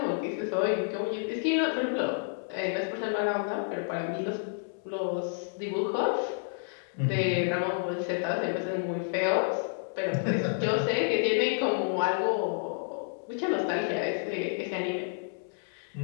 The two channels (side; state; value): right; silent; 58 dB below the other